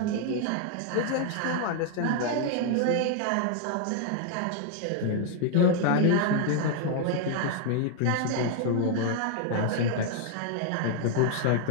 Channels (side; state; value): both; different; correlation 0.00